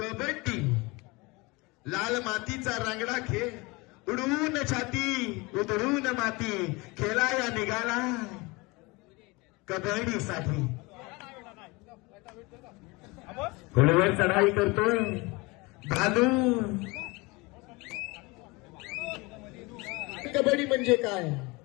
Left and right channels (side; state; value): right; quieter; 25.0 dB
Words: लाल मातीचा रांगडा खेळ, उडवून छाती उधळून माती, खेळाया निघाला कबड्डीसाठी. घोड्यावर चढाई करतोय भालू. कबड्डी म्हणजे काय?